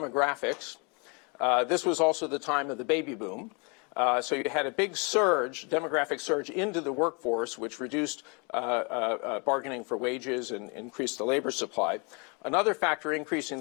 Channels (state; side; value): quieter; right; 32.8 dB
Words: This was also the time of the baby boom. So you had a big surge, demographic surge into the workforce, which reduced bargaining for wages and increased the labor supply. Another factor increasing